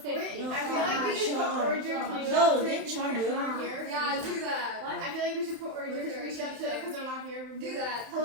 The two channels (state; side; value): late; left; 31 ms